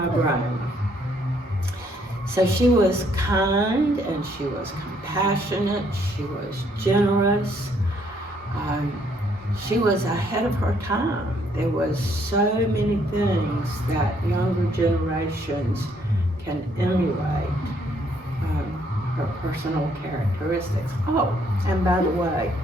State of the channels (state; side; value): normal; both; correlation 0.68